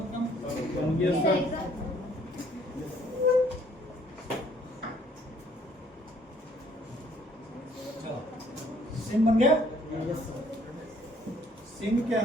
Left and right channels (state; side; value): normal; both; correlation 0.62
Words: बन गया सर। चलो सिम बन गया सिम के